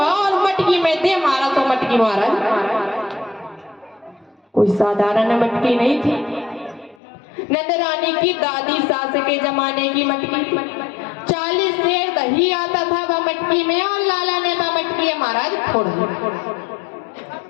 और मटकी में दे मारा। तो मटकी महाराज कोई साधारण मटकी नहीं थी, नंदरानी की दादी सास के जमाने की मटकी। 40 सेर दही आता था वह मटकी में, और लाला ने वह मटकी महाराज फोड़ दी।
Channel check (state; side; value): drops out; right; at 7.0 s